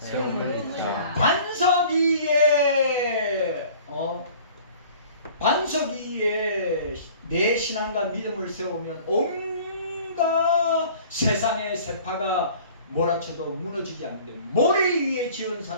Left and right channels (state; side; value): inverted; both; correlation -0.48